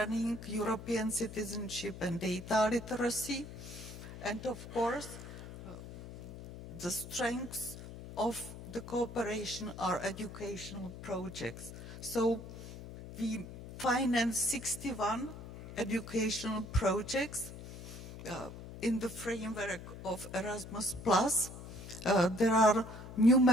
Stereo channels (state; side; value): noise; left; hum, 12 dB below the sound